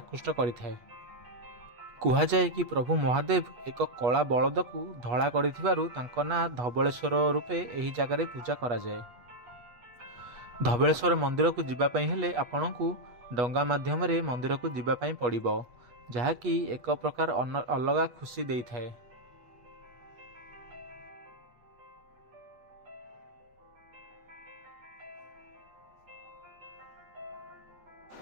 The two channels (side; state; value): left; late; 8.2 ms